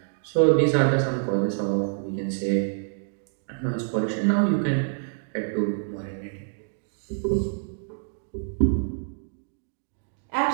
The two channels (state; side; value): silent; left; digital silence